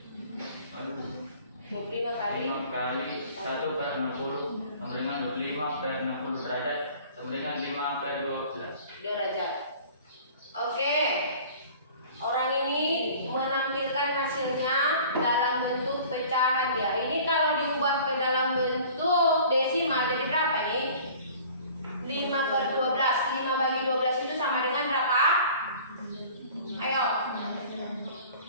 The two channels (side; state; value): both; inverted; correlation -0.47